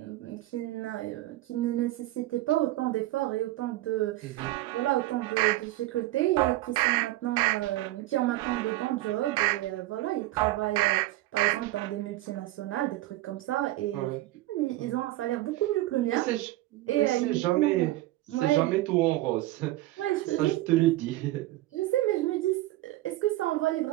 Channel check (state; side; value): quieter; left; 16.7 dB